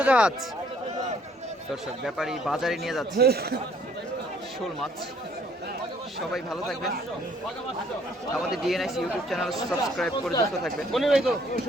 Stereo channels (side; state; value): both; normal; correlation 0.62